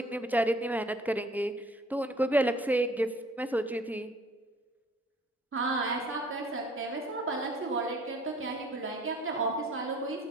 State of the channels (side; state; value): both; normal; correlation 0.54